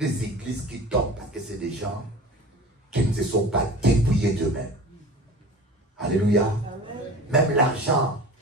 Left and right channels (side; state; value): both; normal; correlation 0.38